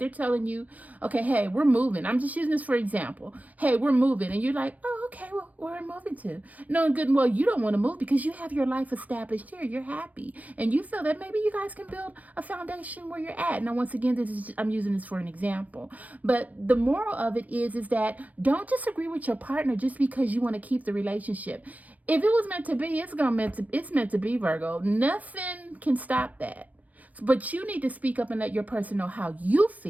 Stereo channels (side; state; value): left; late; 0.073 ms